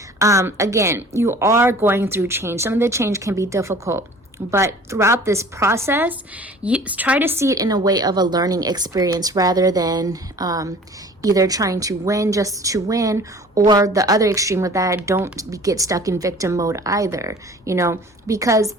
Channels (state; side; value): normal; both; correlation 0.47